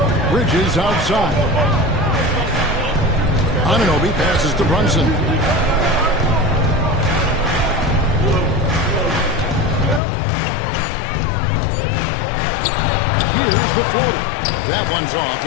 Bridges outside. Anunoby passes to Brunson. Here's the floater. That one's off.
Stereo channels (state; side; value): drops out; right; at 10.0 s